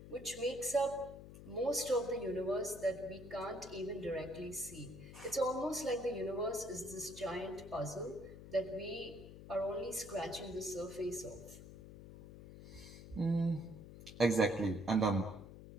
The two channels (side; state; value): left; noise; hum, 14 dB below the sound